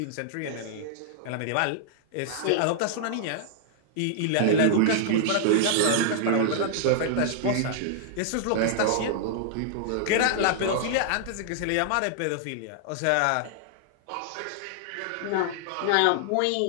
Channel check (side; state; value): both; different; correlation -0.01